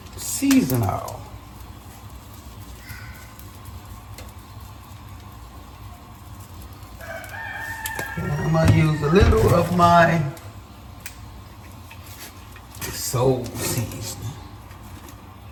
seasoning oil. And I'm gonna use a little of my soul seasoning.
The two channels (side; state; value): both; identical; correlation 1.00